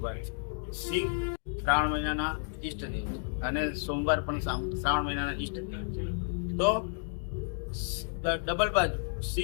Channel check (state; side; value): silent; right; digital silence